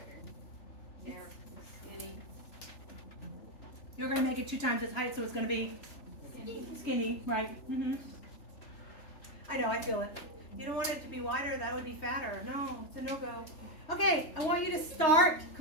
Yeah, skinny. You're going to make it 2 times its height, so it's going to be skinny, right? I know, I feel it. You don't want it to be wider, that would be fatter. No, it's a no-go. Okay, I want you to start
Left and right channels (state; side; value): late; right; 3.4 ms